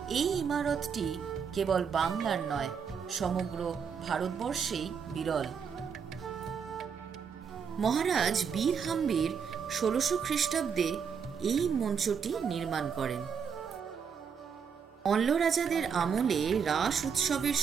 এই ইমারতটি কেবল বাংলার নয়, সমগ্র ভারতবর্ষেই বিরল। মহারাজ বীর হাম্বির 1600 খ্রিস্টাব্দে এই মঞ্চটি নির্মাণ করেন। অল্ল রাজাদের আমলে রাস উৎসবের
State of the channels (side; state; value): left; quieter; 6.7 dB